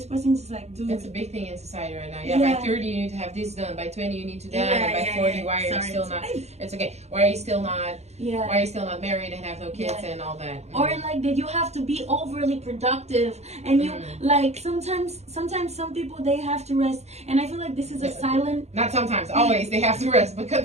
person is like, "Dude, that's a big thing in society right now. Yeah, by 30 you need to have this done. By 20 you need to that. And by 40, why are you still not? It's okay. Why are you still not? Why are you still not married and have no kids and all that? Or like that you have to be overly productive, and you like sometimes some people, they have to rest, and I feel like this is a silent. Not sometimes, always they have to rest. But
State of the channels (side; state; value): left; late; 0.31 ms